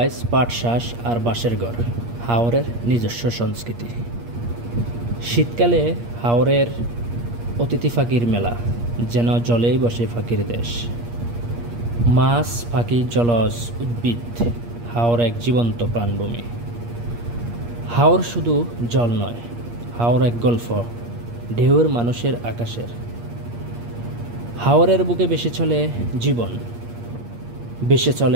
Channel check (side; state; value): left; late; 8.5 ms